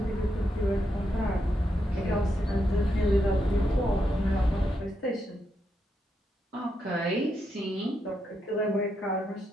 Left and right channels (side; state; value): both; normal; correlation 0.82